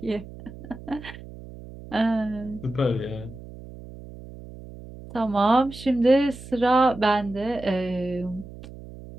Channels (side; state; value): right; noise; hum, 15 dB below the sound